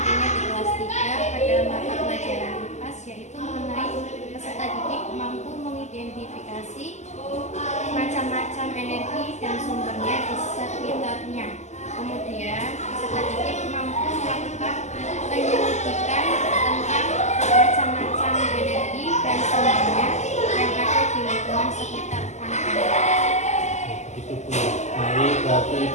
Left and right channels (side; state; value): right; late; 0.33 ms